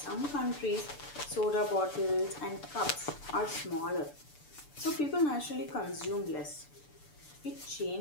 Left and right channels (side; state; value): right; late; 6.8 ms